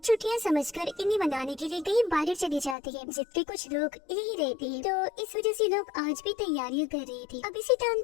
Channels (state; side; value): drops out; right; at 2.8 s